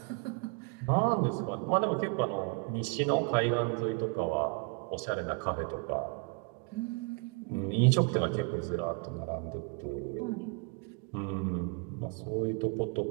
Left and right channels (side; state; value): left; quieter; 34.5 dB